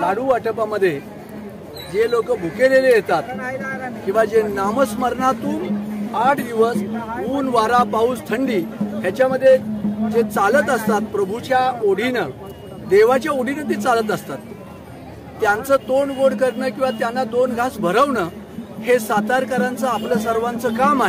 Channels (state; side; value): identical; both; correlation 1.00